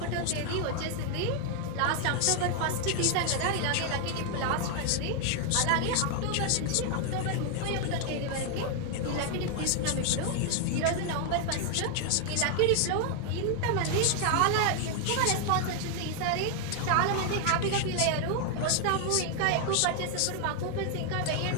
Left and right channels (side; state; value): both; different; correlation 0.00